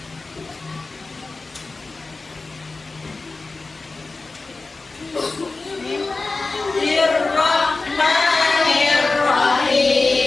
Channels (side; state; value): right; quieter; 3.7 dB